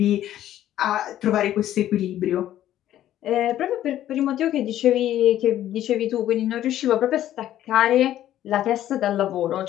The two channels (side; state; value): right; quieter; 12.4 dB